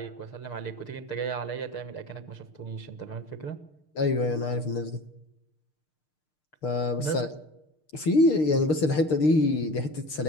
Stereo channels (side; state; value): right; late; 6.5 ms